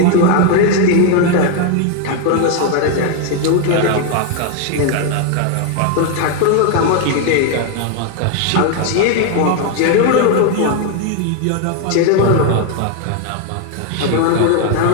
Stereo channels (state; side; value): different; both; correlation 0.01